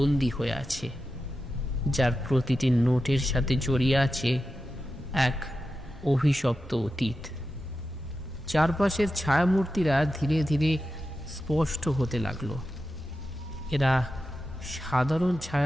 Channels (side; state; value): both; normal; correlation 0.91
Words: হয়ে আছে, যার প্রতিটি নোটের সাথে জড়িয়ে আছে এক অভিশপ্ত অতীত। চারপাশের ছায়ামূর্তিরা ধীরে ধীরে স্পষ্ট হতে লাগলো। এরা সাধারণ